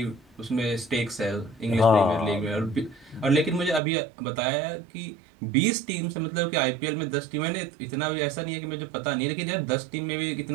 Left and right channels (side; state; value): left; drops out; at 3.8 s